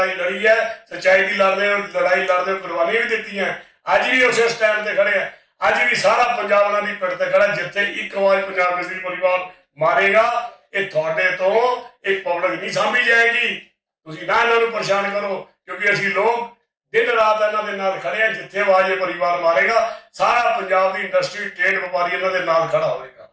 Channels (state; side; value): identical; both; correlation 1.00